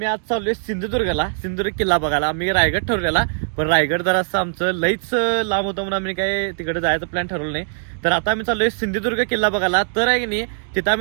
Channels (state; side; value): silent; left; digital silence